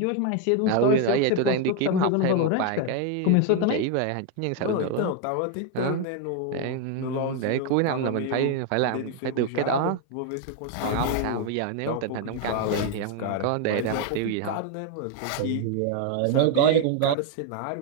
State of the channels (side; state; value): both; different; correlation 0.01